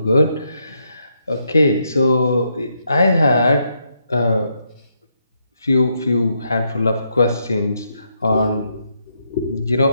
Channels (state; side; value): inverted; both; correlation -0.78